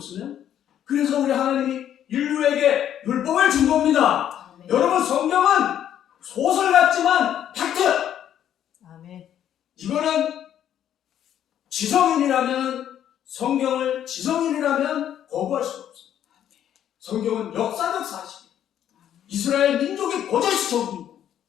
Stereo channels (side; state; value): right; quieter; 10.4 dB